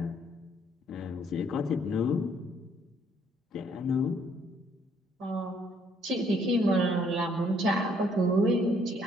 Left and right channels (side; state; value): both; normal; correlation 0.65